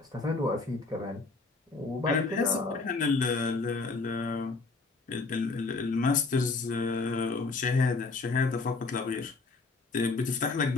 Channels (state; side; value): quieter; right; 3.9 dB